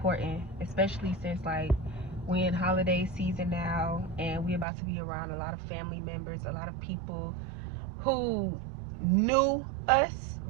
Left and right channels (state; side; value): drops out; left; at 4.7 s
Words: especially since like we're in holiday season now and we're about to be around a lot of family members, a lot of people who knew us